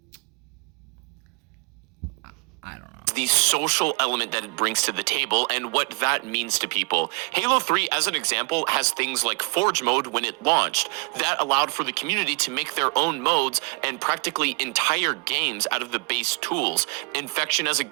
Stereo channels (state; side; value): quieter; left; 33.5 dB